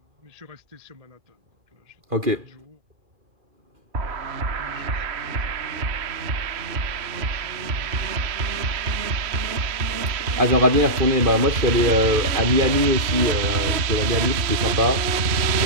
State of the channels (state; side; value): late; left; 3.0 ms